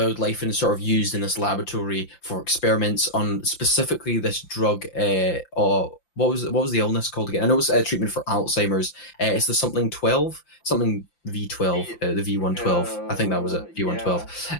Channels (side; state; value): right; late; 5.8 ms